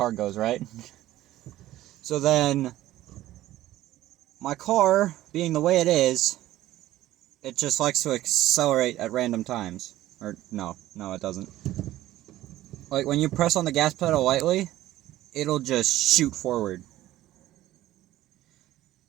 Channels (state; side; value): quieter; left; 14.9 dB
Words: goes, right? So then, my car, being the way it is, it just likes to accelerate at random times. Or, no, it doesn't. Like, when you press on the gas pedal lightly, it'll just shoot forward.